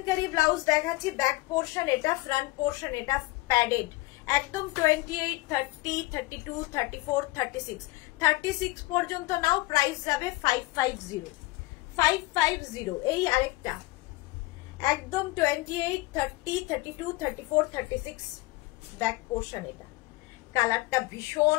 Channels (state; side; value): quieter; right; 20.9 dB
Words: chikankari blouse দেখাচ্ছি। ব্যাক পোর্শন এটা, ফ্রন্ট পোর্শন এটা প্যাডেড, একদম 28, 30, 32, 34, 36, 36 পর্যন্ত নাও। প্রাইস যাবে 550, 550। এই আরেকটা একদম 28, 30, 32, 34, 36 ব্যাক পোর্শন। এটা কালারটা ভীষণ